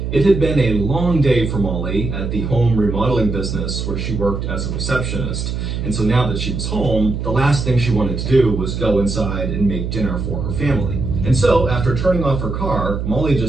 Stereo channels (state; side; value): noise; right; hum, 4 dB below the sound